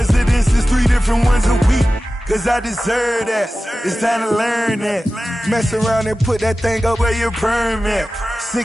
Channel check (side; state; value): both; normal; correlation 0.95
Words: 3 different ones a week. Cause I deserve that, it's time to learn that. Mess around and put that thing up where your permit.